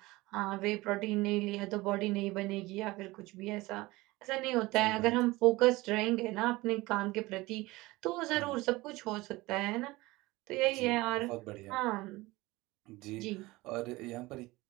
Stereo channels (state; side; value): quieter; left; 20.7 dB